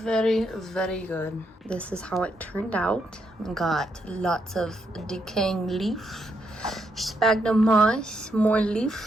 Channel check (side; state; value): both; normal; correlation 0.78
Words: very good. This is how it turned out. Got lots of decaying leaf, sphagnum moss, more